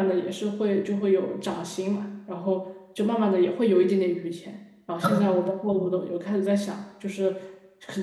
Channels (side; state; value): both; identical; correlation 1.00